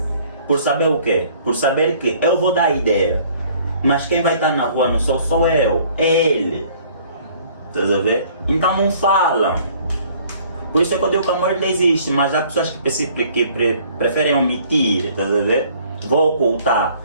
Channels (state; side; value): inverted; both; correlation -0.57